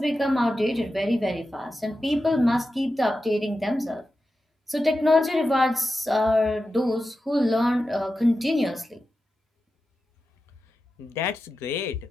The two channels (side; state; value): both; normal; correlation 0.91